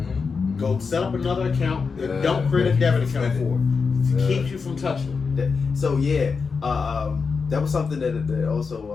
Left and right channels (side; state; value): right; quieter; 5.1 dB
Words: Go set up another account and don't create a debit account for it. It keeps you from touching it. So that was something that